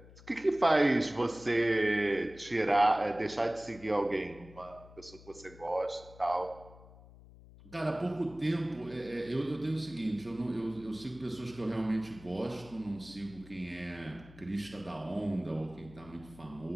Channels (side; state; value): left; noise; hum, 20 dB below the sound